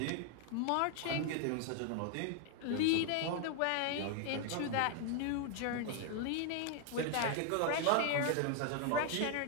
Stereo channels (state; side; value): different; both; correlation 0.00